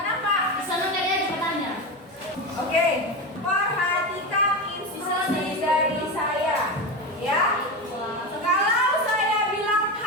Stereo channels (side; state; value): both; normal; correlation 0.19